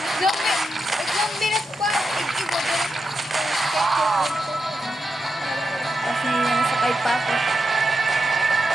Sakay pa ako.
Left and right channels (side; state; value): both; normal; correlation 0.87